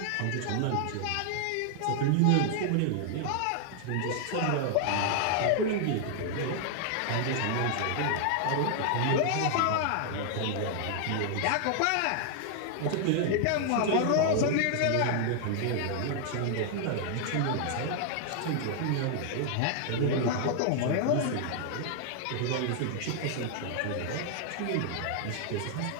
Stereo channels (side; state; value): both; different; correlation 0.00